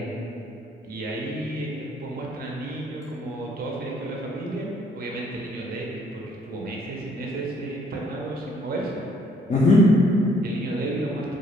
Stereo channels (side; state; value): both; normal; correlation 0.65